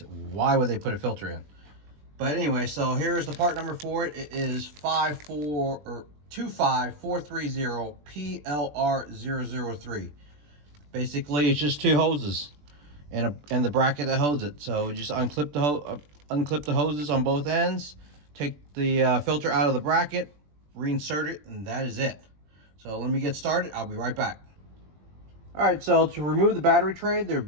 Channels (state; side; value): late; left; 20 ms